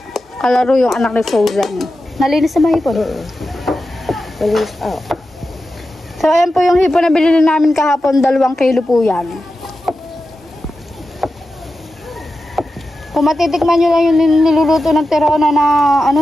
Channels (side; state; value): both; normal; correlation 0.91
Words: Kalaro yung anak ni Frozen. Nalinis na ba hipon? Malinis, So, ayan po yung hipon na binili namin kahapon. 2 kilo po yan. Kung matitikman nyo lang yung niluluto ng Tirona na